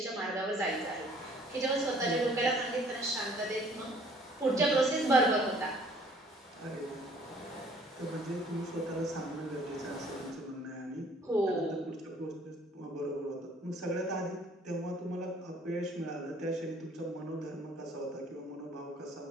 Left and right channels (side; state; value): both; normal; correlation 0.57